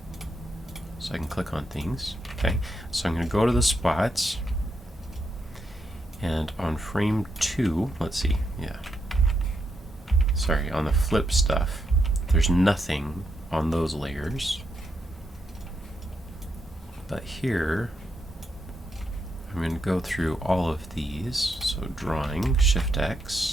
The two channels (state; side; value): normal; both; correlation 0.81